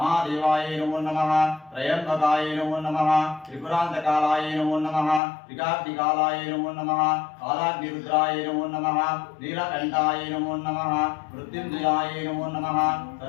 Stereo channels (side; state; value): right; drops out; at 5.2 s